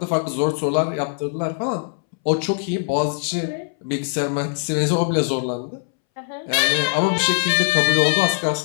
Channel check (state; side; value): silent; right; 65 dB below the other